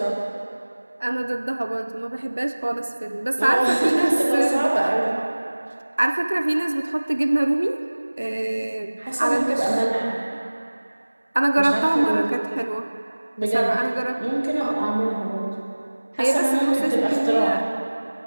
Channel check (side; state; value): both; inverted; correlation -1.00